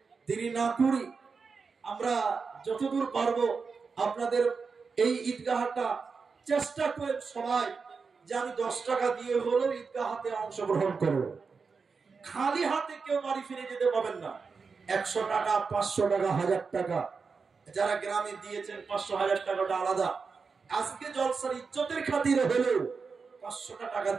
দেরি না করি, আমরা যতদূর পারবো আপনাদের এই ঈদগাহটা চেষ্টা করেন সবাই যে আমি 10 টাকা দিয়ে হলেও ঈদগাহতে অংশগ্রহণ করব। খালি হাতে কেউ বাড়ি ফিরে যেতে পাবেন না। 100 টাকা, 500 টাকা, 1000 টাকা, যারা গ্রামে দিয়েছেন 500 1000 টাকাটা আলাদা। আজকে জলসার ইজ্জতের খাতিরে হলেও 500 টাকা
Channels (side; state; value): left; quieter; 5.0 dB